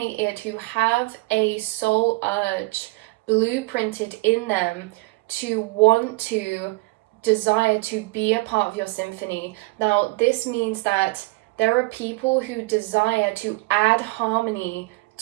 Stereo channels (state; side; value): quieter; left; 24.2 dB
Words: who have a soul urge blueprinted in them to want to desire to be a part of your symphony. Now, this means that there are people who desire to add harmony